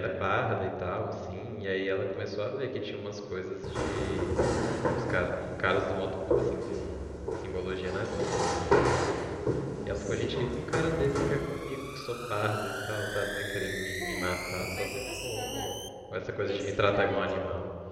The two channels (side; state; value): both; identical; correlation 1.00